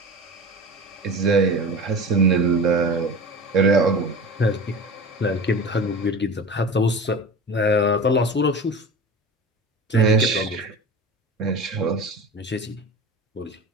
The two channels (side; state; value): both; normal; correlation 0.33